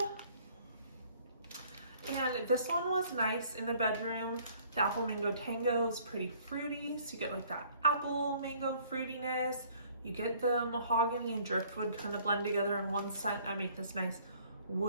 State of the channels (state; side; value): inverted; both; correlation -0.58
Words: And this one was nice in the bedroom. The Apple Mango Tango is pretty fruity, so you get like that apple mango fruitiness. You get the mahogany and driftwood kind of blend together in one scent and make this nice